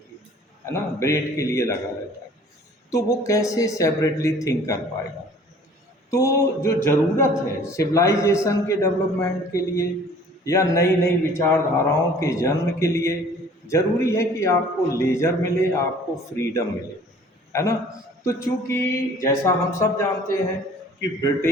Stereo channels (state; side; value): normal; both; correlation 0.51